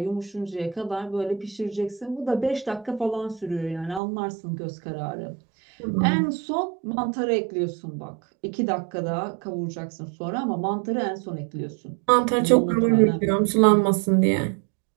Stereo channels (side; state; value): left; drops out; at 4.0 s